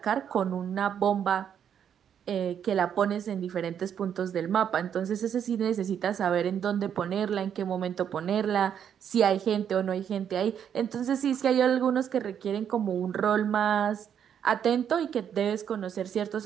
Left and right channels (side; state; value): left; quieter; 8.7 dB